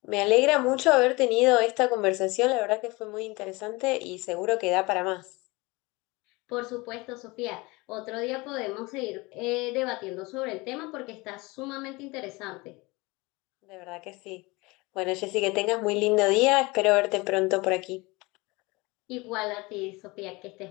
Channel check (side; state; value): right; quieter; 24.0 dB